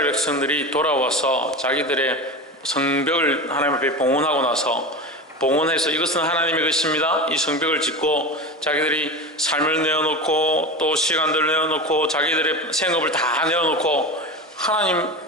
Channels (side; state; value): both; normal; correlation 0.26